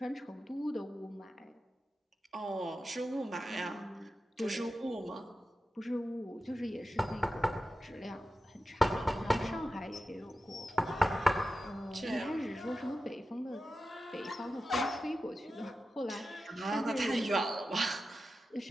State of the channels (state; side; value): normal; both; correlation 0.92